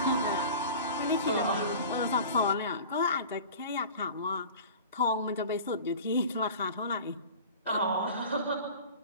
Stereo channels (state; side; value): inverted; both; correlation -0.38